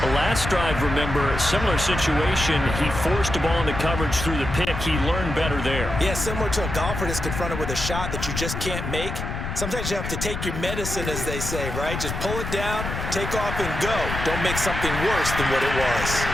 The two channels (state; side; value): noise; left; rumble, 5 dB below the sound